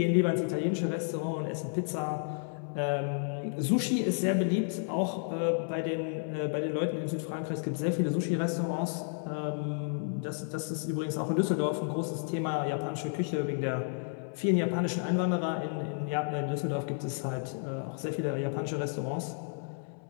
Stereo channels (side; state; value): right; silent; 57 dB below the other